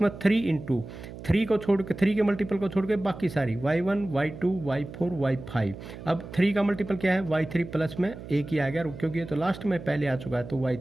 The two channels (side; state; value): right; noise; hum, 13 dB below the sound